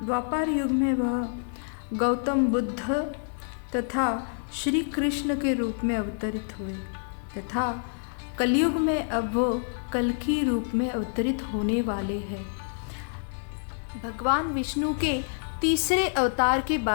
युग में वह गौतम बुद्ध तथा श्री कृष्ण के रूप में अवतरित हुए तथा कलयुग में अब वो कल्कि रूप में अवतरित होने वाले हैं। भगवान विष्णु के तीसरे अवतार के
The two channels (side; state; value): right; silent; digital silence